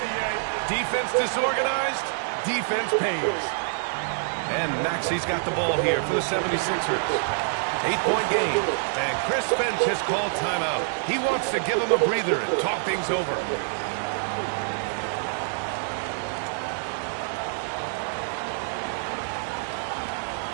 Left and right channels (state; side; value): silent; left; digital silence